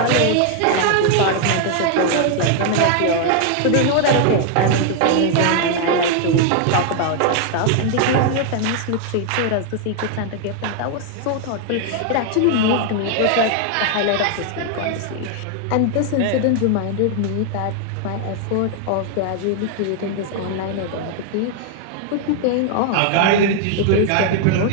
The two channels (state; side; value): different; both; correlation 0.00